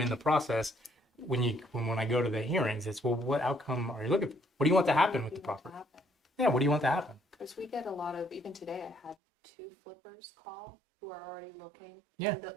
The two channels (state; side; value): drops out; left; at 9.2 s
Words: in the process, when I go to the hearings, it's, well, what outcome are you looking for? What do you want to happen with the property? Yeah, what do you want to happen? Because we get a lot of, even today, I had 2 flippers call who are already looking. Yeah. And